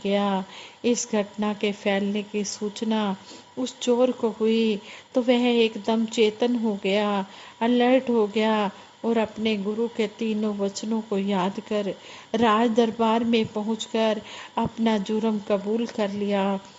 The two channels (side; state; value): both; identical; correlation 1.00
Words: गया। इस घटना के फैलने की सूचना उस चोर को हुई तो वह एकदम चेतन हो गया, अलर्ट हो गया और अपने गुरु के 3 वचनों को याद कर राज दरबार में पहुंचकर अपना जुर्म कबूल कर लिया